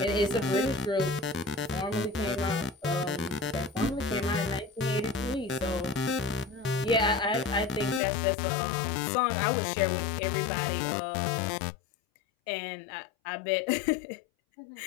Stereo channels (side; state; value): right; drops out; at 8.0 s